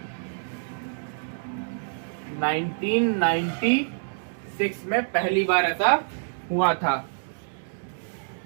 नाइनटीन 96 में पहली बार ऐसा हुआ था।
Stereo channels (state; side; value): silent; left; digital silence